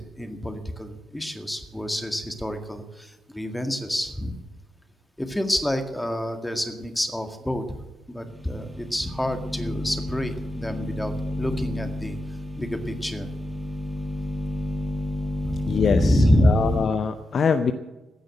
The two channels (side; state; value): both; normal; correlation 0.90